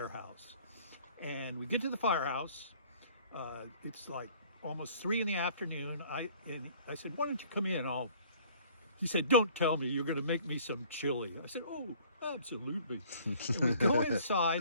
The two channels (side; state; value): both; inverted; correlation -0.54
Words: And we get to the firehouse. It's like almost 3 in the afternoon. I said, "Why don't you come in? He said, "Don't tell me you're going to make me some chili." I said, "Oh, absolutely." And we go inside,